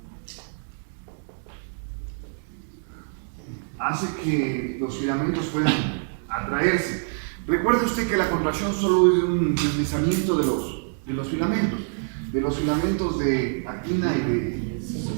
los filamentos puedan atraerse. Recuerde usted que la contracción solo es un deslizamiento de los filamentos de actina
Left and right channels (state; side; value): silent; left; digital silence